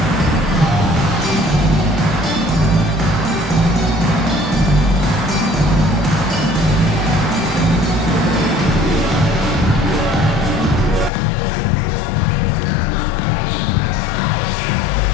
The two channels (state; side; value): drops out; right; at 11.1 s